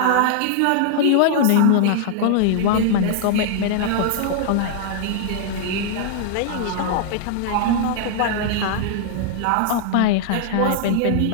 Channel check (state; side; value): different; both; correlation -0.01